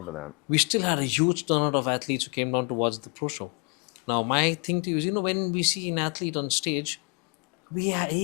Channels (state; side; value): quieter; right; 35.0 dB